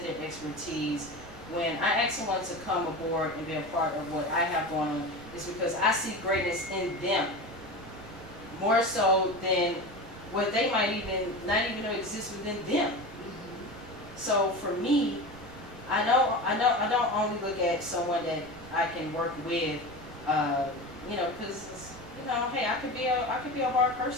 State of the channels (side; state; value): right; noise; rumble, 20 dB below the sound